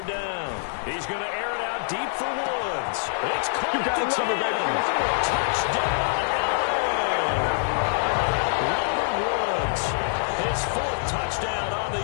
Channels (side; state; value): right; silent; digital silence